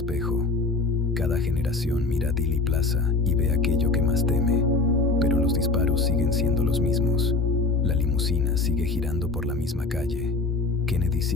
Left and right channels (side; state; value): right; quieter; 3.6 dB